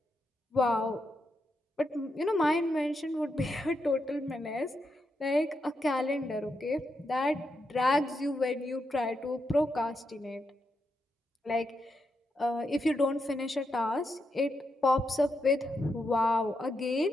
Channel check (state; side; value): normal; both; correlation 0.83